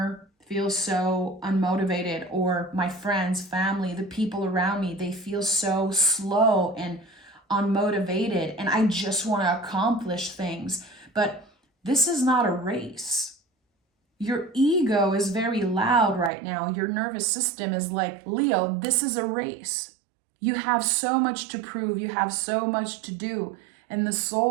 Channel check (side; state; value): left; drops out; at 16.3 s